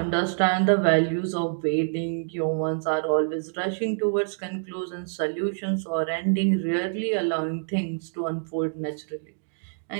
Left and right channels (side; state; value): left; silent; digital silence